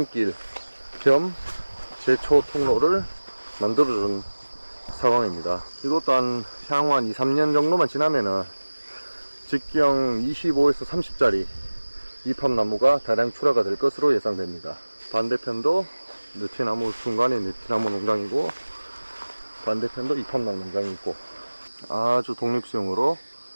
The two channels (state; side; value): inverted; both; correlation -1.00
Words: 겸 제초 통로를 만들어준 상황입니다. 이것도 향후 한 2-3년 정도만 지나면은 직경 25에서 30짜리 이팝나무가 다량 출하가 될 것으로 예상됩니다. 반대편도 느티나무, 중간에 느티나무 농장이고 반대편도 이팝나무 농장이 있고 아주 독립수용으로